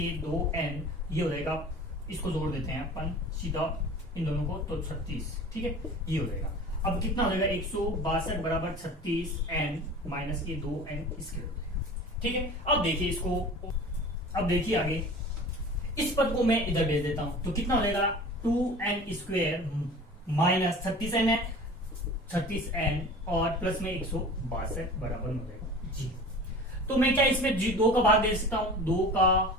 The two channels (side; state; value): both; normal; correlation 0.39